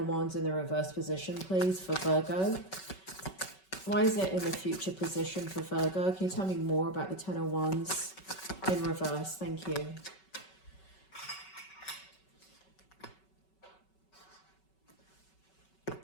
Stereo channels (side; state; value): right; late; 5.3 ms